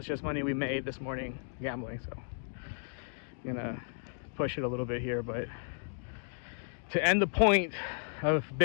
just money we made this morning gambling. So I'm gonna push it a little bit here, but to end the point of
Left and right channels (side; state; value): right; silent; digital silence